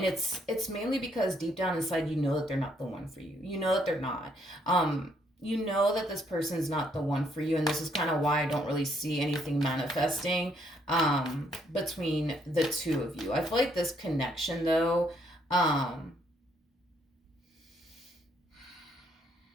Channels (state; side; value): normal; both; correlation 0.70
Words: it's mainly because deep down inside, you know that they're not the one for you. You know that they're not. You know that this person's not the one for you, and this is kind of why I don't really see anything manifesting between the two of you. I feel like this connection, though, I'm